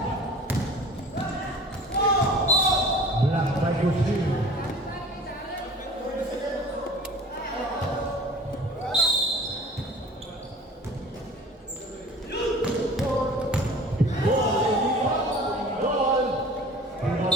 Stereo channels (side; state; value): both; normal; correlation 0.44